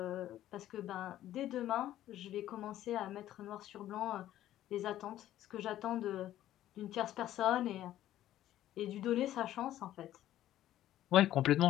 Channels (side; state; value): right; quieter; 13.0 dB